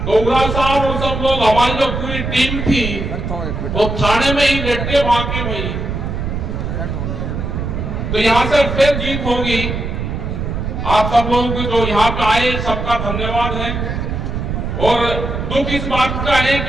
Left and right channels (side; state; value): right; noise; rumble, 3 dB below the sound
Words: तो उगरा साहब और सब लोग, हमारी जो पूरी टीम थी वो थाने में ही लेटे वहां के भाई। तो यहाँ से फिर जीत होगी। आप सब लोगों को जो यहाँ पे आए सबका धन्यवाद है। और दुख इस बात का है